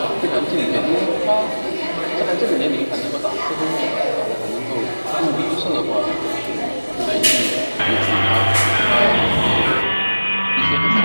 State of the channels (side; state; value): both; inverted; correlation -1.00